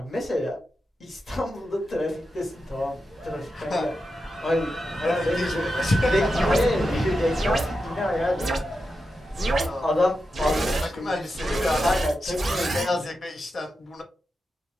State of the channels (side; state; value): both; normal; correlation 0.89